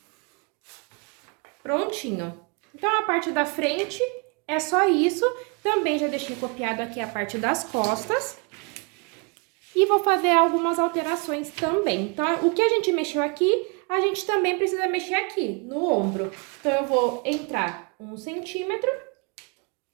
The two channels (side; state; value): left; quieter; 33.5 dB